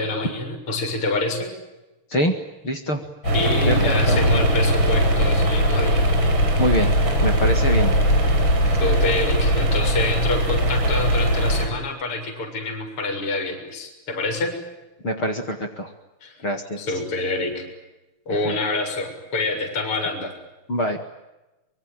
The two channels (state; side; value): late; right; 6.5 ms